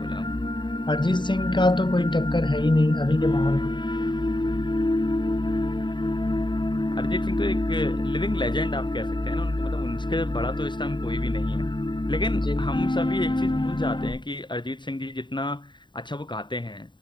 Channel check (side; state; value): right; late; 0.23 ms